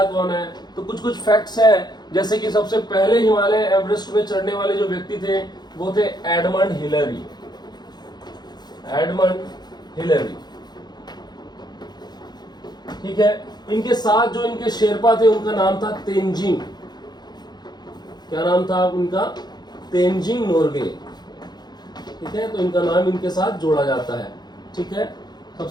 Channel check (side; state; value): right; late; 0.20 ms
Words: कौन है। तो कुछ कुछ फैक्ट्स हैं, जैसे कि सबसे पहले हिमालय एवरेस्ट में चढ़ने वाले जो व्यक्ति थे वो थे एडमंड हिलरी, एडमंड हिलरी, ठीक है। इनके साथ जो इनके शेरपा थे उनका नाम था तेंजिंग, क्या नाम था उनका, तेंजिंग नोर्गे, ठीक है। तो इनका नाम इनके साथ जोड़ा जाता है, ठीक है।